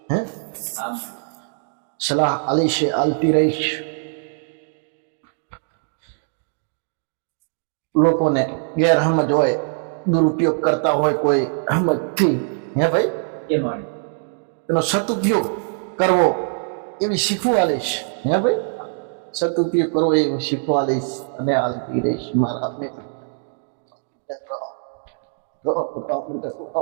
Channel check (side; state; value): left; silent; digital silence